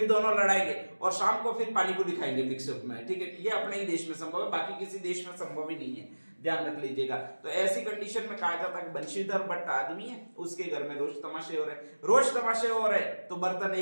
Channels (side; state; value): both; inverted; correlation -1.00